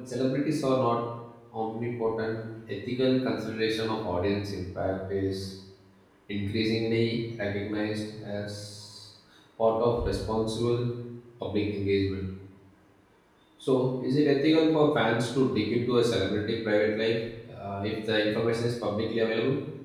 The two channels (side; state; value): both; identical; correlation 1.00